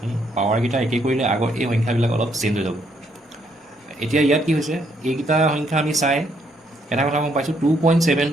পাৱাৰকেইটা একেই কৰিলে আগৰ এই সংখ্যাবিলাক অলপ চেঞ্জ হৈ যাব এতিয়া ইয়াত কি হৈছে এইকেইটা সংখ্যা আমি চাই এটা কথা গম পাইছোঁ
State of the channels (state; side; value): normal; both; correlation 0.72